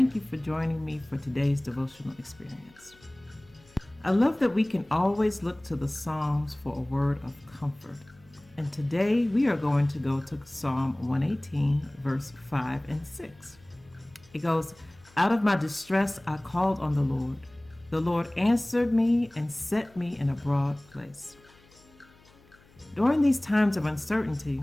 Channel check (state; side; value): noise; left; hum, 28 dB below the sound